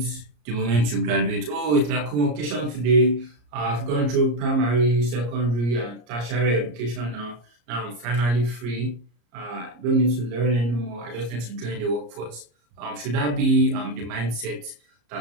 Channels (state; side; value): late; left; 34 ms